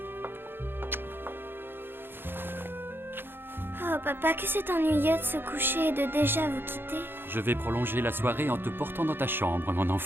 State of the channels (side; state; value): left; late; 0.10 ms